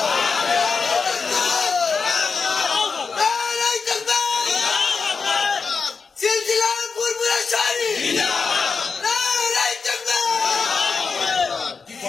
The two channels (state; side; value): quieter; right; 5.0 dB